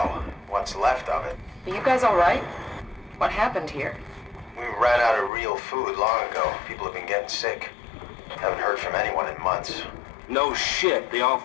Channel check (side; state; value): right; drops out; at 5.3 s